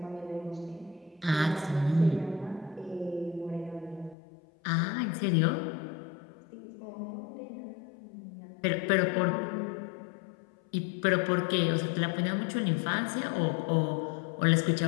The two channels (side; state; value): right; drops out; at 4.2 s